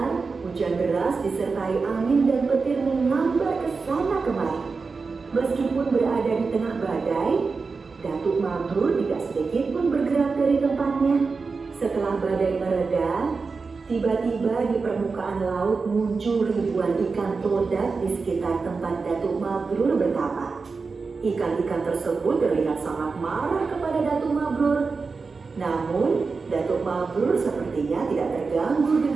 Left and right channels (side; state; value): left; quieter; 4.5 dB